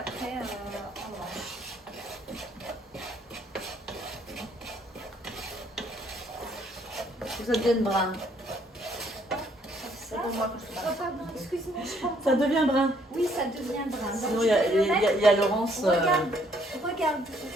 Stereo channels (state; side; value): normal; both; correlation 0.66